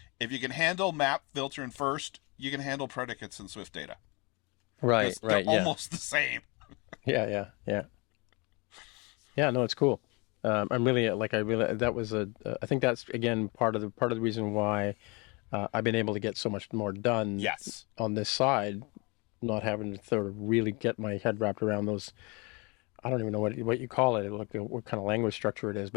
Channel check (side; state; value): right; quieter; 28.8 dB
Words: If you can handle map, filter, and first, you can handle predicates in SwiftData. Right. They're almost the same. Yeah. No, it's cool. I think that's again part of the reason why I've been able to get so much more done. Yes. On this side, not having to sort of really get my head wrapped around those. I don't even know what you call it. What kind of language structure it is,